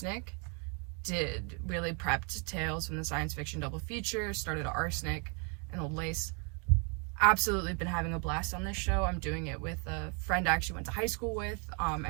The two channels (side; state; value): left; quieter; 36.3 dB